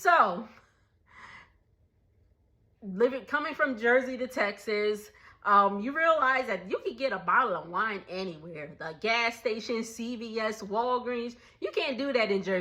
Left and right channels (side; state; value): both; identical; correlation 1.00